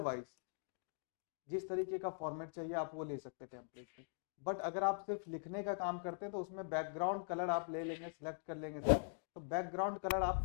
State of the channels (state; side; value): silent; right; digital silence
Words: जिस तरीके का फॉर्मेट चाहिए आप वो ले सकते हैं टेम्पलेट में। बट अगर आप सिर्फ लिखने का काम करते हैं तो उसमें बैकग्राउंड कलर आप ले लेंगे, सिलेक्ट कर लेंगे सर, तो बैकग्राउंड कलर